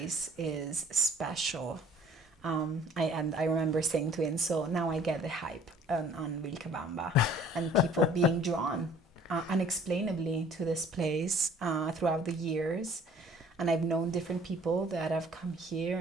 is special. I remember saying to him, so now I get the hype on Vilcabamba and people being drawn unexplainably to this place throughout the years. And I've known different people that have come here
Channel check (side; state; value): both; normal; correlation 0.54